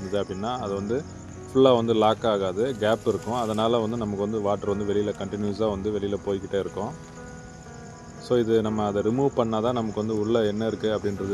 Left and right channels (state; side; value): identical; both; correlation 1.00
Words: அப்படின்னா அது வந்து ஃபுல்லாக வந்து லாக் ஆகாது, கேப் இருக்கும். அதனால் வந்து நமக்கு வந்து வாட்டர் வந்து வெளியில் கண்டினியூஸாக வந்து வெளியில் போய்கிட்டே இருக்கும். ஸோ இது நம்ம அதை ரிமூவ் பண்ணால் தான் நமக்கு வந்து உள்ளே என்ன இருக்குது